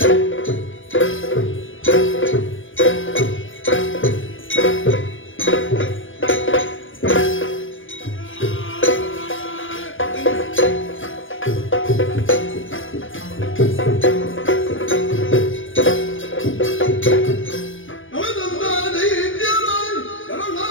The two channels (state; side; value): late; right; 0.57 ms